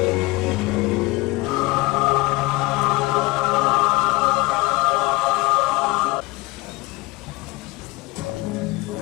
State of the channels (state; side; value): quieter; right; 22.8 dB